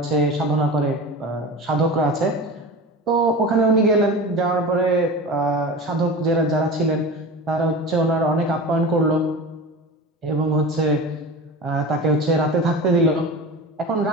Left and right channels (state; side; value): normal; both; correlation 0.31